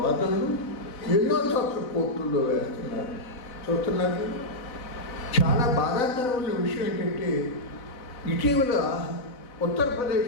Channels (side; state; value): right; late; 4.0 ms